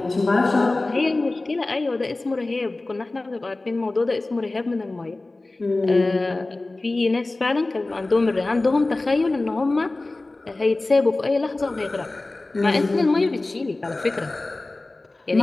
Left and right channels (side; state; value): right; quieter; 3.0 dB